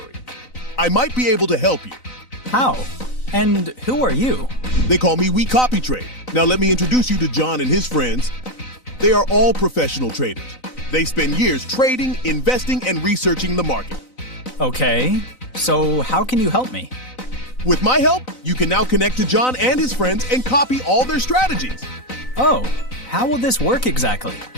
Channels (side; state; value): right; late; 3.9 ms